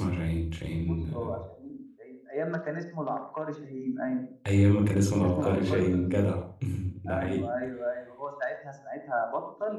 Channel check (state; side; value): identical; both; correlation 1.00